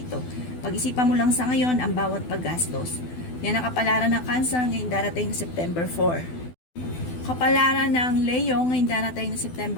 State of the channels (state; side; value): late; right; 12 ms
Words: Pag-isipan mo lang sa ngayon ang bawat paggastos. Yan ang kapalaran ng Cancer ngayong darating na September 4. Kapalaran ng Leo ngayong darating na